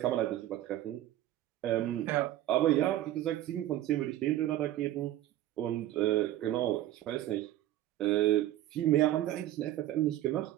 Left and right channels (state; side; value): quieter; left; 13.7 dB